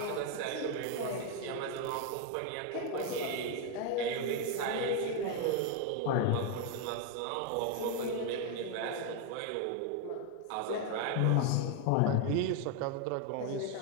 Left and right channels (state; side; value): different; both; correlation 0.01